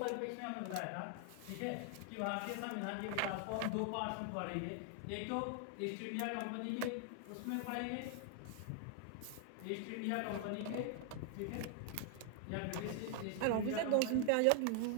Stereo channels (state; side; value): different; both; correlation 0.00